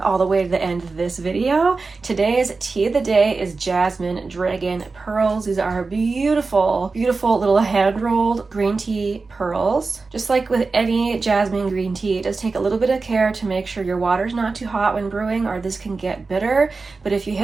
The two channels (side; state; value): left; quieter; 4.1 dB